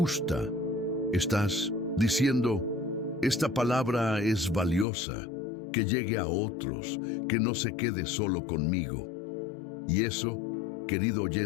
estás diciendo, esta palabra es valiosa, que llegue a otros, que no se quede solo conmigo. Y eso, querido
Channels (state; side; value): drops out; right; at 4.9 s